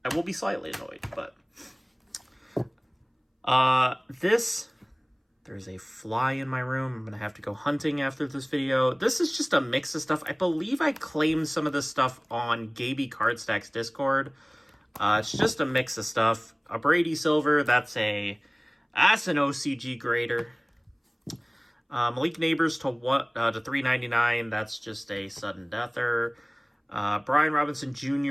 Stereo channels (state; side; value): identical; both; correlation 1.00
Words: I will be slightly annoyed, but there's a fly in my room. I'm going to have to go hunting after this video. This is just a mix of stuff. I believe I claimed some of this stuff on Gaby Cardstack's Discord. It's just a mix of stuff. A Brady Silver, that's an OCG grader. Malik Neighbors to $3.99. That's just a sudden deather. Brian Robinson